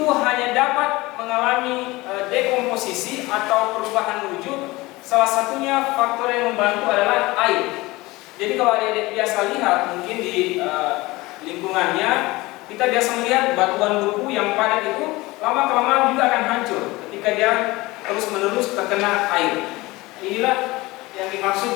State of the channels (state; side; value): quieter; right; 20.9 dB